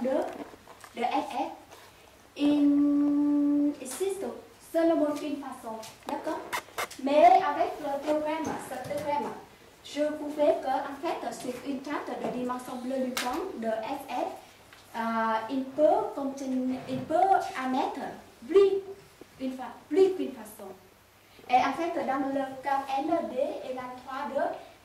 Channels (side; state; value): both; identical; correlation 1.00